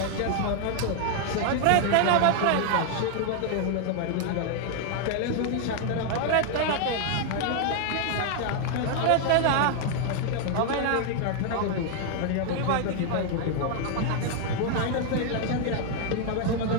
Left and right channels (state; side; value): different; both; correlation 0.00